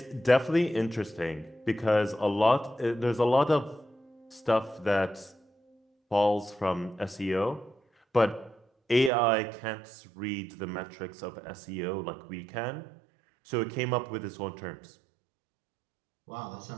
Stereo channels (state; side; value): drops out; left; at 9.1 s